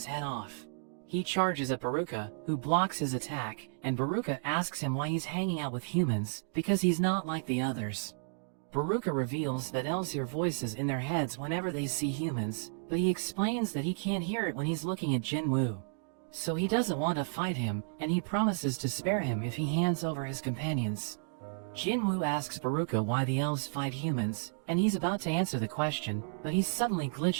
head off. He charges at Baruka, who blocks his attack, and Baruka asks him why he's hanging out with humans, because he's not like the others. Baruka reveals that elves hear voices in their heads whenever they see humans, but he explains that he can't hear it when he's looking at Jinwoo. So he doesn't want to fight him, and he promises to spare him if he hands over his companions. Jinwoo asks Baruka why the elves fight humans, and he's about to answer the question, but he suddenly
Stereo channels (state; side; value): silent; left; digital silence